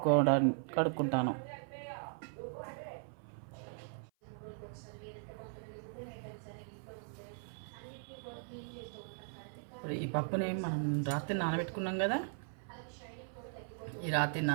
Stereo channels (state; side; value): silent; left; 52 dB below the other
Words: కడుక్కుంటాను. ఇప్పుడు ఈ పప్పుని మనం రాత్రి నానబెట్టుకున్నాం కదా, ఈ రాత్రి